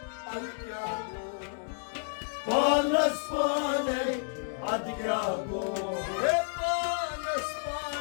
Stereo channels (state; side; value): silent; right; digital silence